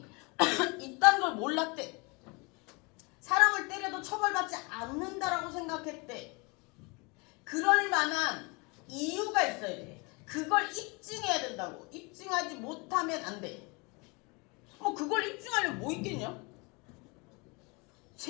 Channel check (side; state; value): right; quieter; 28.7 dB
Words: 있다는 걸 몰랐대. 사람을 때려도 처벌받지 않는다라고 생각했대. 그럴 만한 이유가 있어야 돼. 그걸 입증해야 된다고. 입증하지 못하면 안 돼. 뭐 그걸 입증하려면 뭐 있겠냐?